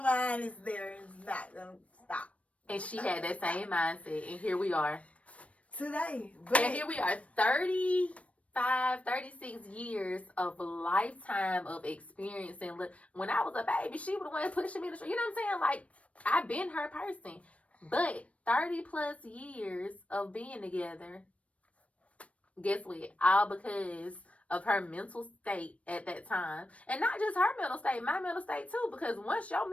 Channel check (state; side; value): late; right; 0.064 ms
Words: mind, it's there. It's not going to stop. And she had that same mindset. And here we are. Today. And here we are. 35, 36 years of lifetime of experience. And look, when I was a baby, she was the one pushing me to the street. You know what I'm saying? Like, I've been her person. But 30 plus years of being together, guess what? All because of her mental state at that time. And not just her mental state, my mental state too. Because once your